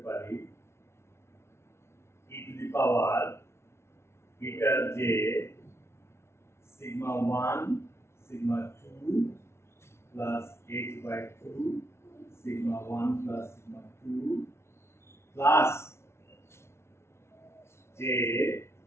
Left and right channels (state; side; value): late; right; 0.13 ms